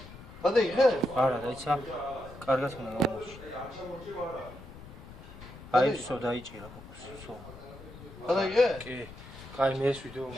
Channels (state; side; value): noise; left; rumble, 16 dB below the sound